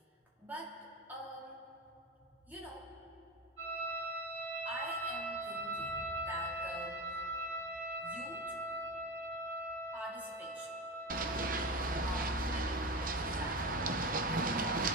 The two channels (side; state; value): both; normal; correlation 0.23